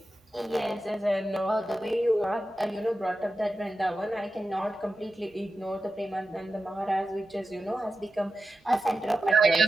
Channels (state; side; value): normal; both; correlation 0.92